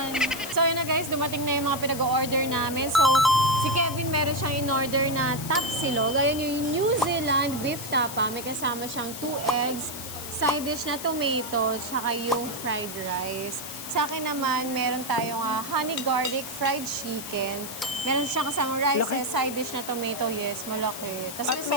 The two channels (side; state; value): left; noise; hiss, 9 dB below the sound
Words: So yun na guys, dumating na yung mga pinag-order namin. So, si Kevin meron siyang in-order na tapsilog. Ayan yung New Zealand beef tapa. May kasama siyang 2 eggs, side dish na tomato, tsaka yung fried rice. Sa akin naman, meron tayong honey garlic fried chicken. Meron siyang kasamang rice, Laki. side dish na tomato. Yes, malaki. Tapos At may may